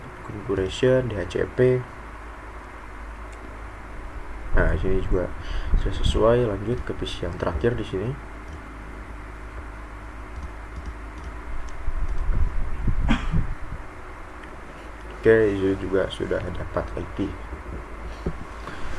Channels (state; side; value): identical; both; correlation 1.00